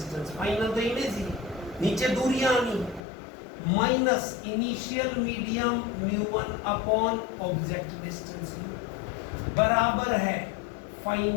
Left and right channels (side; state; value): right; drops out; at 3.0 s